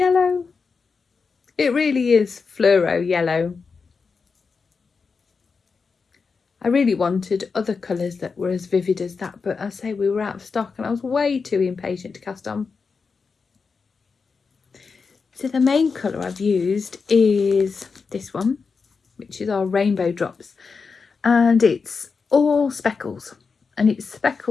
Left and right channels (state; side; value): quieter; right; 5.0 dB